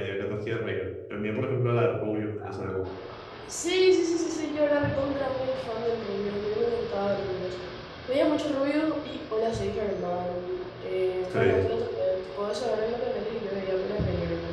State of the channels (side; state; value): both; identical; correlation 1.00